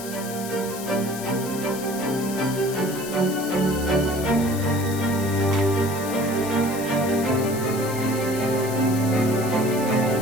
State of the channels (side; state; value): left; noise; hiss, 11 dB below the sound